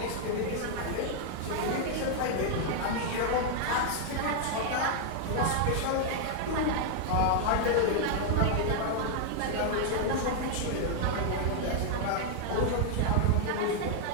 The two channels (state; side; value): different; both; correlation 0.00